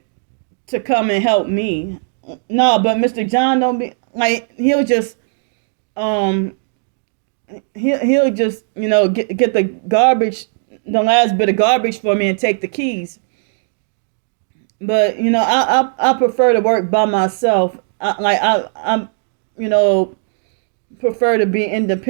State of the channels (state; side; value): silent; left; digital silence